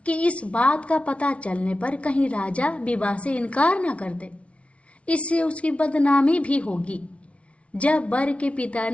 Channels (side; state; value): right; late; 0.062 ms